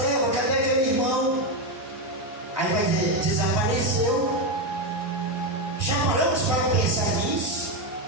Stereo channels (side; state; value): both; normal; correlation 0.08